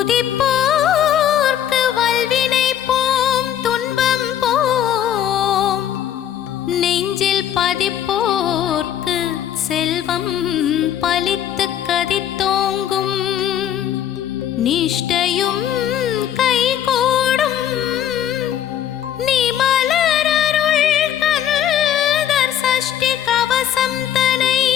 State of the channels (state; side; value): quieter; right; 10.4 dB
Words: வல்வினை போம் துன்பம் போம், நெஞ்சில் பதிப்போர்க்கு செல்வம் பலித்து கதித்தோங்கும், நிஷ்டையும் கைகூடும் நிமலரருள் கந்தர் சஷ்டி கவசம் தனை